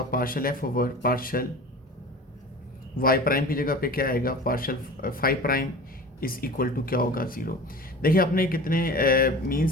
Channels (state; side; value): normal; both; correlation 0.37